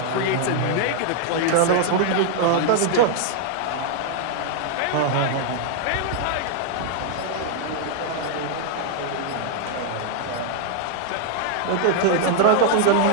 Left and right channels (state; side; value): different; both; correlation 0.00